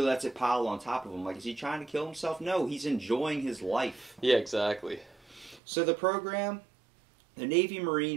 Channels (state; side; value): drops out; left; at 5.6 s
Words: lets it pile on top of him. Like, is he trying to kill himself? No, he's enjoying his life. Yeah, exactly. So the program The Navy